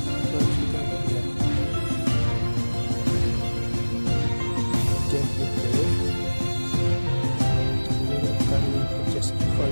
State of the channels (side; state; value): both; inverted; correlation -1.00